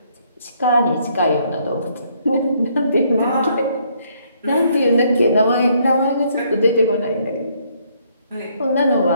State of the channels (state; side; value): inverted; both; correlation -0.68